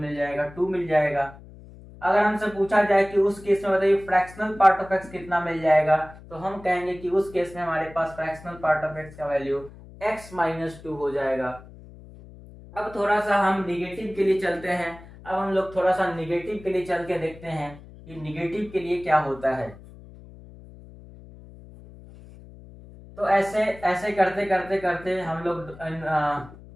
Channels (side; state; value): left; noise; hum, 19 dB below the sound